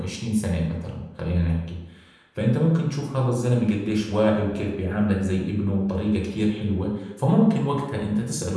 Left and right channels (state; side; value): identical; both; correlation 1.00